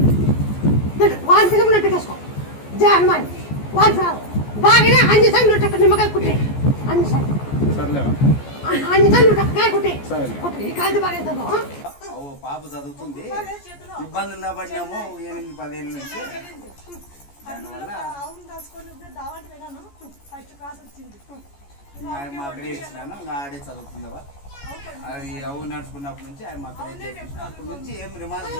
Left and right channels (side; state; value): right; late; 14 ms